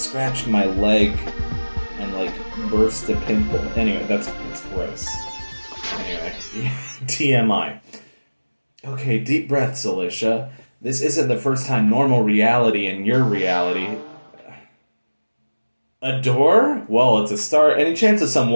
my leg and like burst a pimple. Anyway, that's gross. Anyway, TMI. Okay, deep breaths, Alicia. This isn't the first time normal reality in your reality. A door? Well, it's a start. Any chance of some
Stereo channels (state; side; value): inverted; both; correlation -1.00